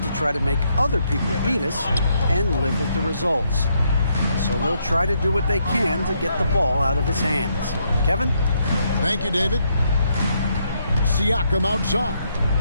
to try to make other people beat us and live with the results. So they'll try to do what they can to get the ball out of his hands. Kevin? Thank you, David. Siakam outside.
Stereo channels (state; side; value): inverted; both; correlation -0.75